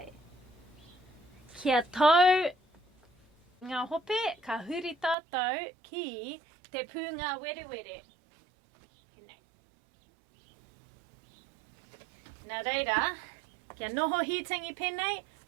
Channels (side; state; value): left; drops out; at 5.2 s